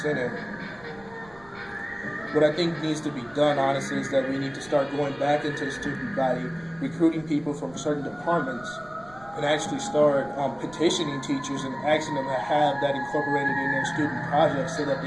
What I think needs to be done, honestly, is that we need to start going back into the student body, recruiting people from certain departments, and actually start petitioning teachers and asking them to have that incorporated in their student projects so that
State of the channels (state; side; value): noise; right; rumble, 24 dB below the sound